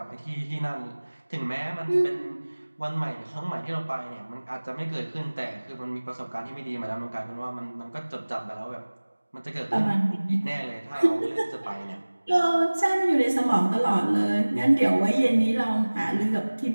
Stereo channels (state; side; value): inverted; both; correlation -1.00